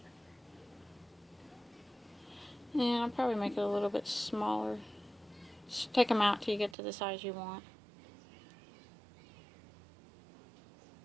And I'll probably make it a little bit smaller. Just take them out till you get to the size you want.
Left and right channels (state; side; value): drops out; left; at 6.8 s